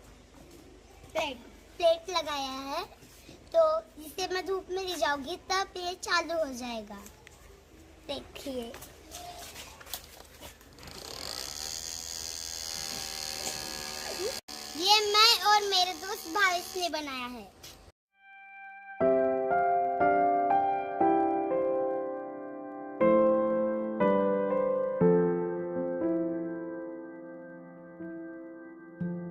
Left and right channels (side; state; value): both; identical; correlation 1.00